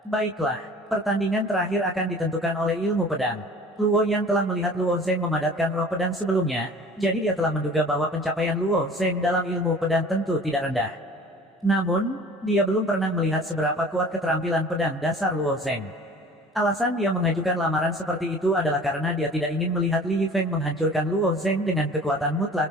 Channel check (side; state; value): both; normal; correlation 0.45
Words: Baiklah, pertandingan terakhir akan ditentukan oleh ilmu pedang. Luo Yan telah melihat Luo Zheng memadatkan roh pedang sebelumnya, jadi dia telah menduga bahwa pencapaian Luo Zheng dalam ilmu pedang tentu tidak rendah. Namun, dia belum pernah melihat seberapa kuat keterampilan pedang dasar Luo Zheng. Alasan dia mengajukan lamaran seperti itu adalah karena dia tidak ingin melihat Li Yifeng menghancurkan Luo Zheng dengan kekuatan